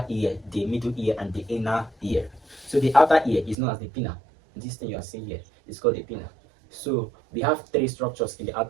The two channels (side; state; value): left; drops out; at 3.6 s